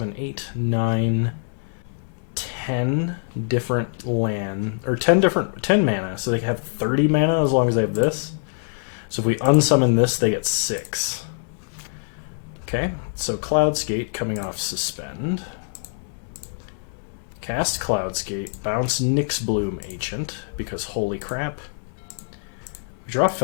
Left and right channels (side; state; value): right; silent; digital silence